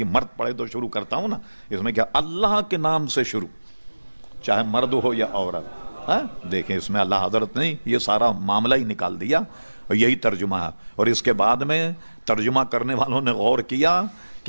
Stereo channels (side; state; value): both; inverted; correlation -1.00